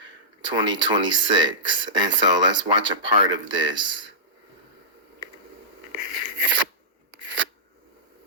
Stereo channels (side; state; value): both; normal; correlation -0.18